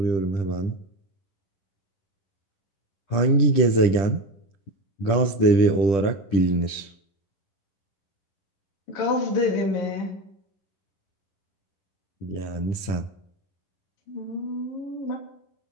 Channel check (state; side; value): late; right; 10 ms